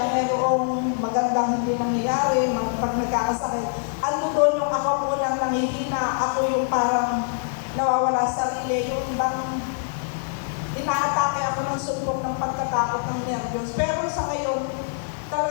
mayroong magandang hindi nangyayari, pag nagkakasakit, ano doon yung ako munang nangihina, ako yung parang nawawala sa sarili, yung bang inaatake ako ng sumbong ng pagkatakot ng nervyos. Pero sa ngayon,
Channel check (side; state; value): right; silent; digital silence